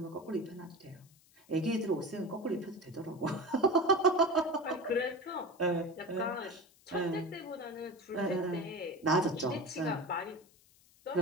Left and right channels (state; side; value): noise; left; hiss, 29 dB below the sound